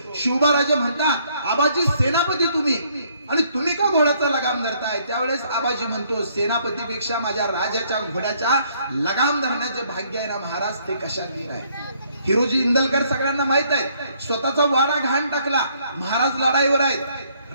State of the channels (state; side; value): inverted; both; correlation -0.67